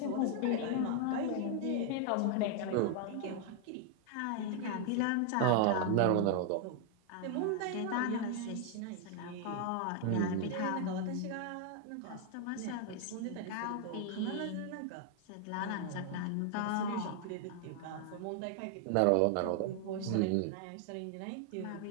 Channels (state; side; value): different; both; correlation 0.00